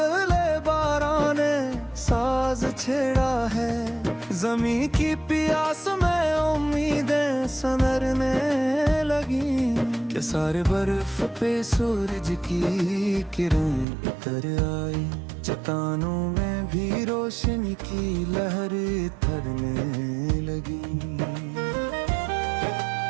बारां ने साज छेड़ा है, जमी की प्यास में उम्मीदें सनरने लगी। के सारे बर्फ पे सूरज की किरण उतर आई, चट्टानों में भी रोशनी की लहर थरने लगी।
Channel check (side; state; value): left; drops out; at 13.9 s